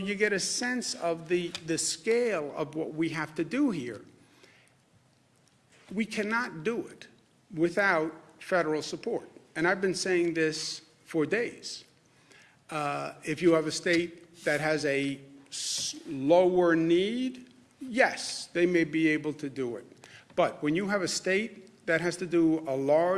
get a sense of the scale of what we have to do here. We cannot do it without federal support. And I've been saying this for days. If you have a state that has a lower need, yes, they may be able to do it. But when you have a state that has to do a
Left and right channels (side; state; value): both; identical; correlation 1.00